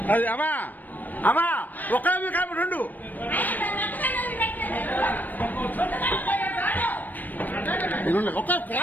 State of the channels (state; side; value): late; right; 0.087 ms